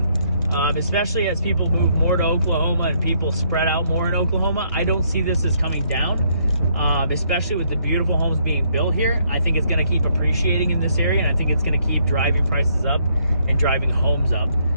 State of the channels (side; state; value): both; inverted; correlation -0.70